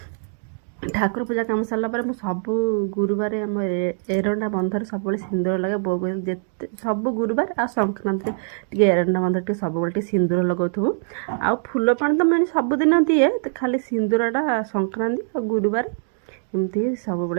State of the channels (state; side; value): silent; left; 64 dB below the other